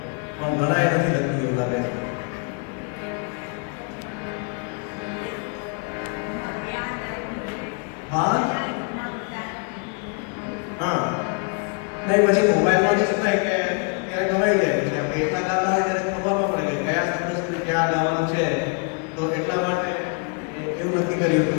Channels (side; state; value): right; quieter; 38.0 dB